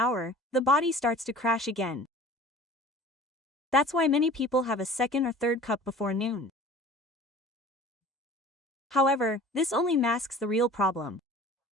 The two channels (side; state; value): both; normal; correlation 0.44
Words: the body starts to crash again. That's why many people have a second or third cup before noon. However, this only masks the real problem.